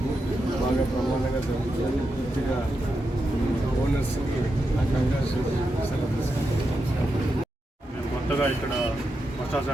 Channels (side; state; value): both; normal; correlation 0.87